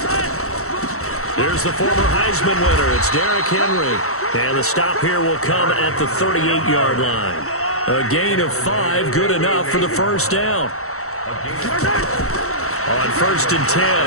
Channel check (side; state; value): right; late; 0.64 ms